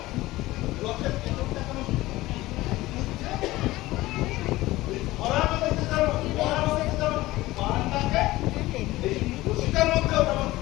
রথের তেতনটা কেন ঘুরছে? ওই ধরার মধ্যে যেমন বান ডাকে, এই রশিটার মধ্যেও তেমন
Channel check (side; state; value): right; quieter; 18.1 dB